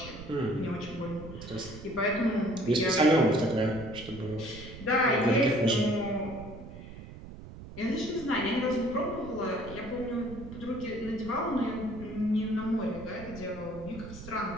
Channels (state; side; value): noise; right; rumble, 14 dB below the sound